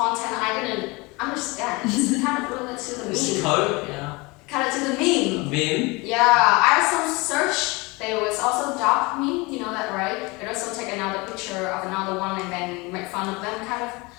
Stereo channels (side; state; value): right; quieter; 25.3 dB